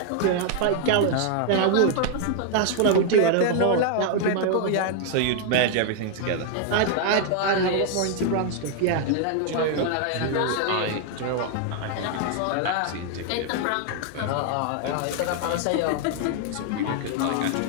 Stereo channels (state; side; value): different; both; correlation 0.00